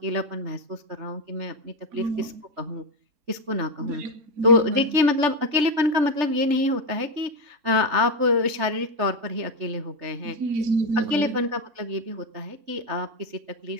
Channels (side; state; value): left; late; 3.4 ms